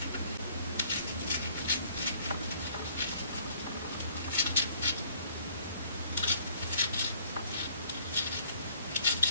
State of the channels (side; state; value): both; inverted; correlation -0.60